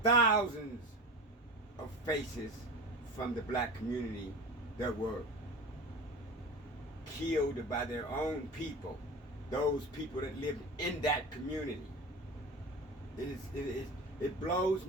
thousands of faces from the black community that were killed by their own people, those people that lived in that community. It blows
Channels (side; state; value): both; normal; correlation 0.31